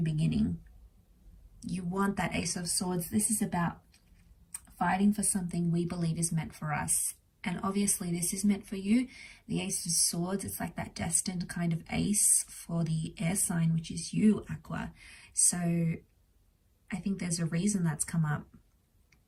beginning. You want that Ace of Swords. This is about fighting for something we believe is meant for us. And obviously this is meant for you. The Ace of Swords, it's like that destined kind of ace for the air sign, which is you, Aqua. So I think there's a reason that's come up.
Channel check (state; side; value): identical; both; correlation 1.00